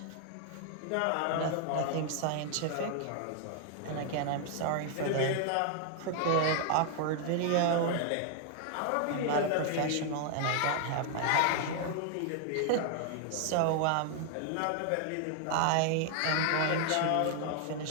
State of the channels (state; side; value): different; both; correlation 0.00